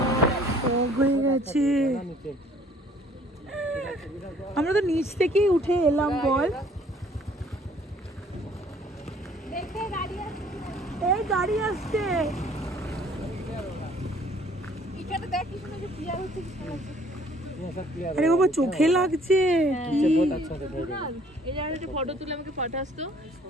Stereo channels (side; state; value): both; normal; correlation 0.58